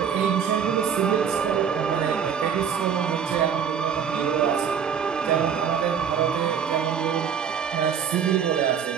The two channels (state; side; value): quieter; left; 7.5 dB